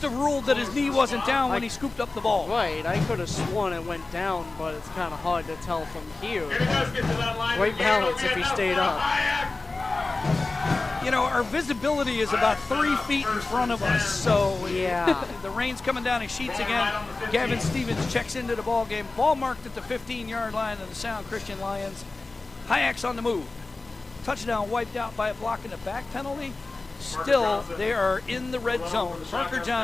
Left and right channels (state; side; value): quieter; right; 3.4 dB